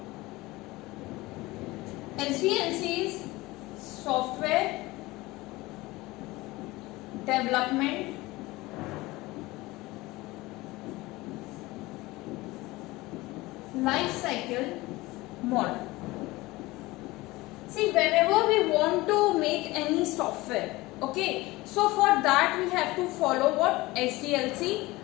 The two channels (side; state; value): right; quieter; 20.4 dB